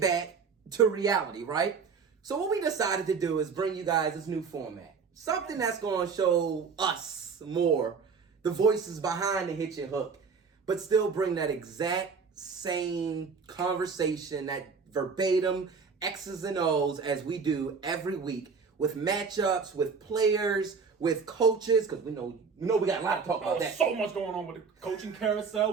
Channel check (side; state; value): left; quieter; 5.4 dB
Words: to reality, right? So what we decided to do is bring you guys this new format. Something that's going to show us more the voices behind the Hitchin Hook, but still bring that exact same conversation, that verbatim X's and O's as we do every week with matchups, with players, with coaches, because we know we got a lot to talk about that. So much going on with the coaching